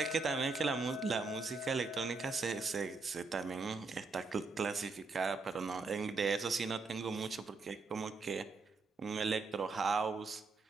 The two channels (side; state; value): left; quieter; 4.0 dB